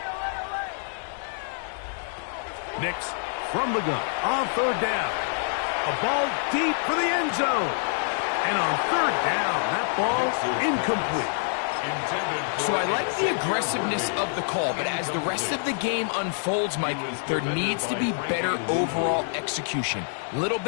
Nix from the gun on third down. A ball deep for the end zone. And on third down, that ball incomplete. So I like the aggressiveness of the call, but as the rest of the game unfolds, Mike, there needs to be better overall execution. A little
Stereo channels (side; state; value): right; silent; digital silence